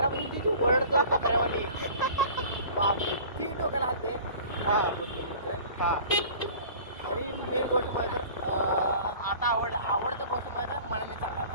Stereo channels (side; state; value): both; inverted; correlation -0.44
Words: ती तू ओरडतो आता खऱ्यावानी. बापरे, ती डोक्याला हाते. हां आणि मेन गोष्ट माझ्या आता आवडतं गोष्ट माझ्या मनाने चांगला